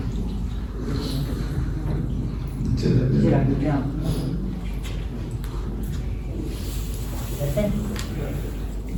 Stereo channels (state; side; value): identical; both; correlation 1.00